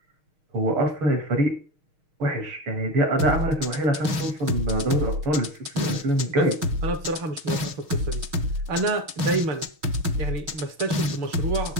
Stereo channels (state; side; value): late; left; 6.4 ms